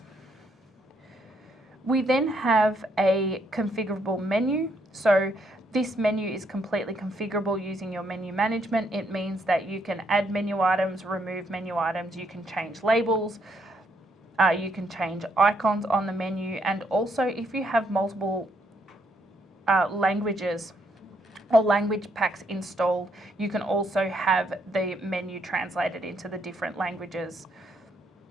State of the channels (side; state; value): both; normal; correlation 0.73